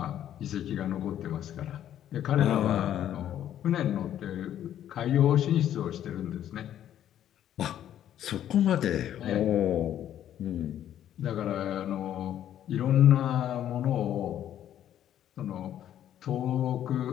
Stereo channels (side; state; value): right; quieter; 11.0 dB